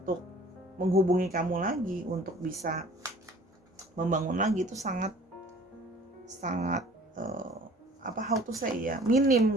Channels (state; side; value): normal; both; correlation 0.50